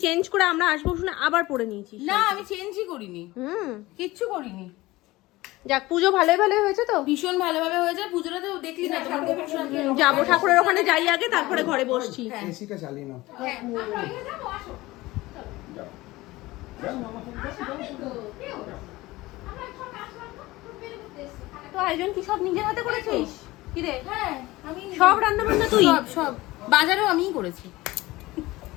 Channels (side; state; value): right; quieter; 19.3 dB